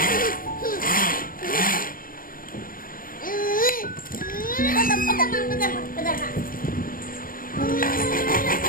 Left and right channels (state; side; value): late; right; 0.41 ms